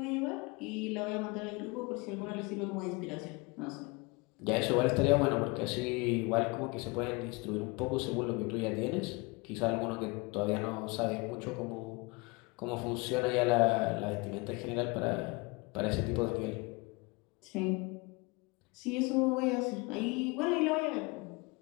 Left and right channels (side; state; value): right; quieter; 27.1 dB